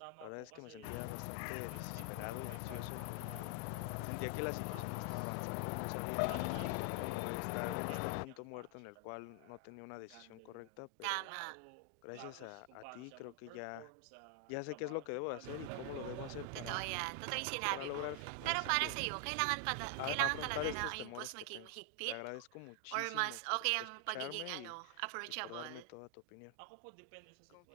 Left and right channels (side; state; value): both; different; correlation 0.00